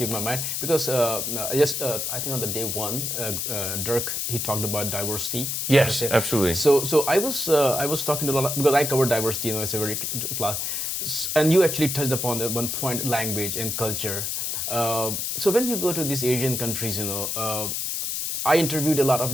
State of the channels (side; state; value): left; noise; hiss, 2 dB below the sound